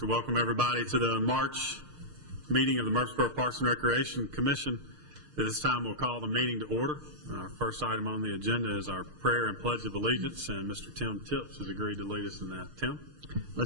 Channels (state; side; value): late; left; 6.5 ms